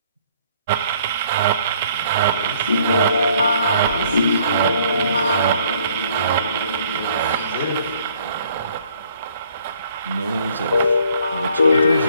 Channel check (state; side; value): inverted; both; correlation -0.62